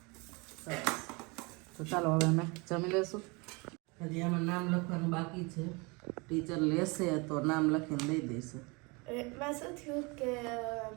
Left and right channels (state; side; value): quieter; left; 28.1 dB